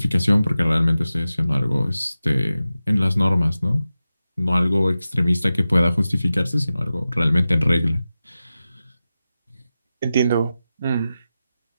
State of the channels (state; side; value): inverted; both; correlation -0.94